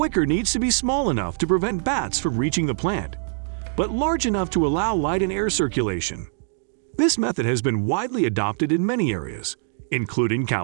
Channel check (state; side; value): silent; left; digital silence